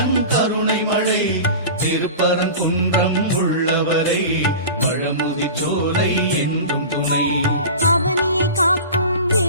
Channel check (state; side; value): inverted; both; correlation -0.34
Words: கருணை மழை, திருப்பரங்குன்றம் உள்ளவரை, பழமுதி சோலை என்றும் துணை. அவனியை காக்கும்